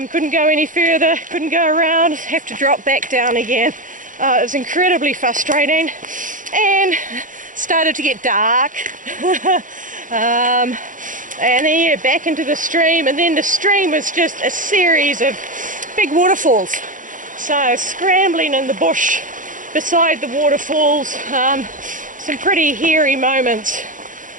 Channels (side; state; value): left; late; 0.38 ms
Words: go any further, couldn't go around, have to drop back down again. It was incredibly frustrating, and started to get dark. And then yeah, back into the stream, and then the stream was just a series of big waterfalls. So scrambling in the bush beside the waterfalls, some pretty hairy moments.